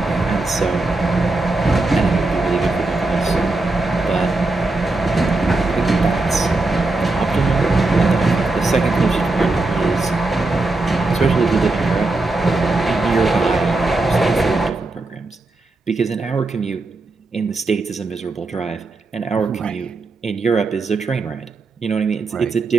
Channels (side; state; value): left; quieter; 3.2 dB